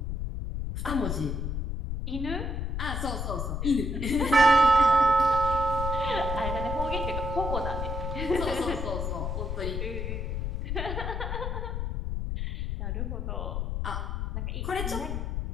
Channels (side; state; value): left; noise; rumble, 2 dB below the sound